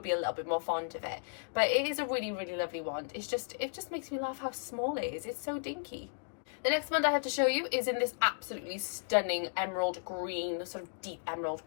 be a little bit more fond of it. But it is a really lovely wand. It just makes me laugh how small it is. It's so dinky. The next wand I have to show you is in this absolutely stunning emerald green, sort of deep emerald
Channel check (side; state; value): right; silent; digital silence